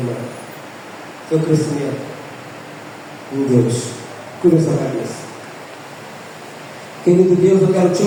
seu crescimento em Deus. Cura essa cabeça. Querido Deus, eu quero te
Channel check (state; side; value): identical; both; correlation 1.00